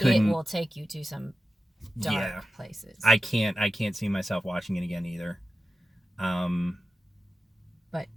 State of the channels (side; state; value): both; normal; correlation 0.94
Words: will take you to some dark places. I can't see myself watching it again either. But